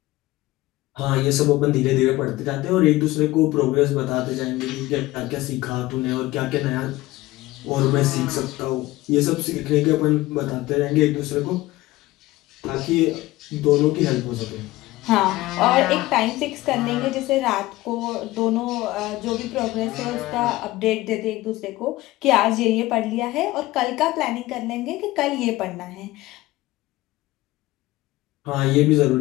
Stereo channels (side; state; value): right; quieter; 18.2 dB